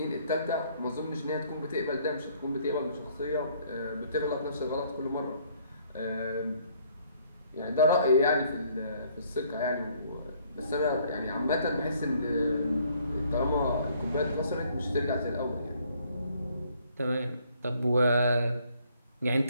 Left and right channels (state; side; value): inverted; both; correlation -0.63